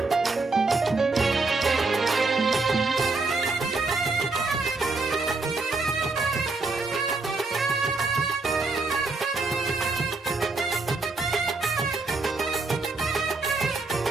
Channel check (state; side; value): quieter; left; 3.7 dB